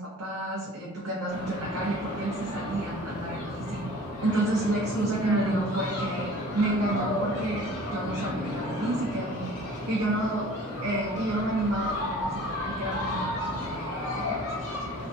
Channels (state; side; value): normal; both; correlation 0.46